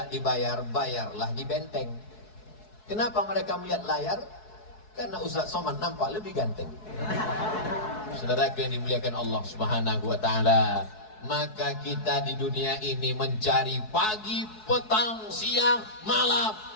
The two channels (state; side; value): late; right; 4.7 ms